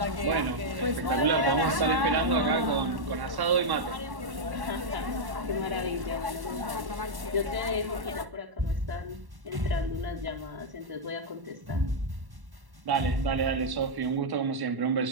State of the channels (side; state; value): left; late; 1.1 ms